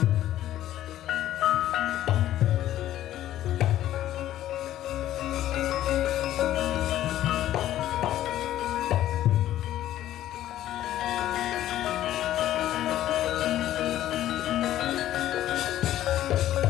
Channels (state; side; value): quieter; right; 13.0 dB